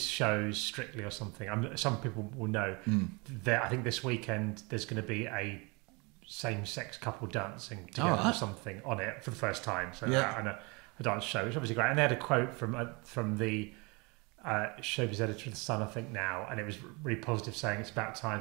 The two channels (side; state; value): left; quieter; 28.5 dB